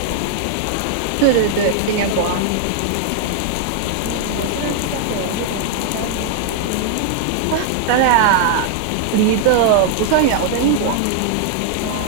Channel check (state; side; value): different; both; correlation 0.00